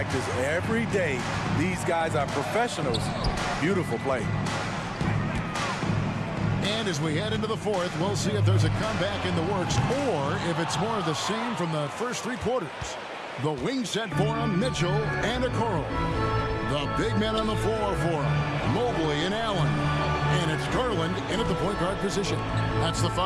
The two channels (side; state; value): both; identical; correlation 1.00